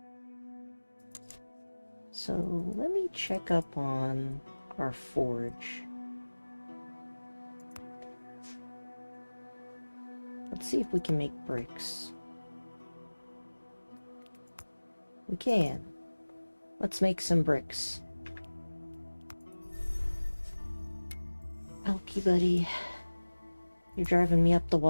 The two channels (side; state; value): both; inverted; correlation -1.00